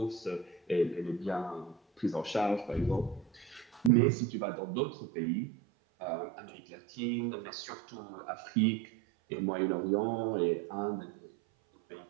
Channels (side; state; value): left; drops out; at 3.9 s